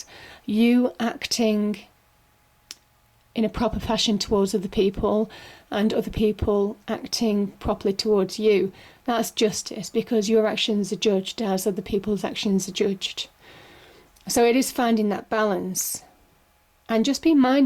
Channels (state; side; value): identical; both; correlation 1.00